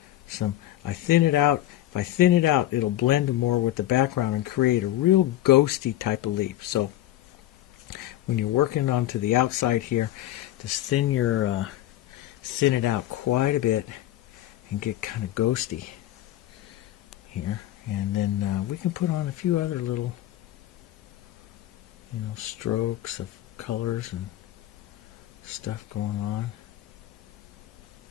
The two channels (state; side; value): quieter; right; 14.0 dB